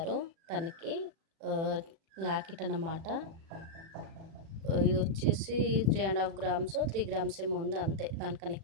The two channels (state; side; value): late; left; 36 ms